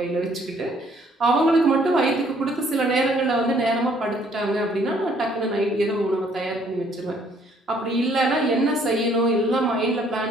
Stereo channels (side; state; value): both; normal; correlation 0.64